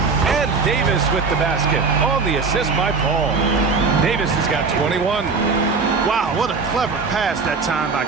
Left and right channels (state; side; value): quieter; left; 4.6 dB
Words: Davis with the basket on the assist by Paul. Davis has got 21. Wow, what a clever pass that time by